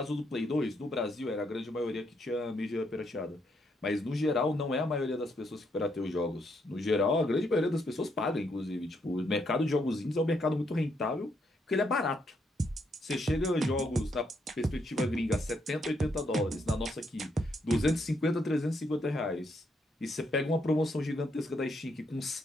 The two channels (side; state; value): both; normal; correlation 0.76